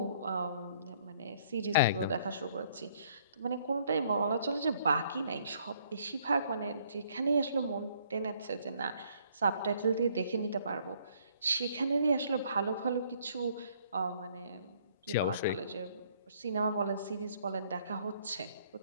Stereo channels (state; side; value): inverted; both; correlation -0.64